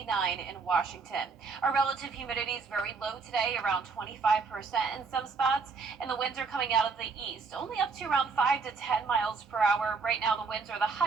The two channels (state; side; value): quieter; left; 4.8 dB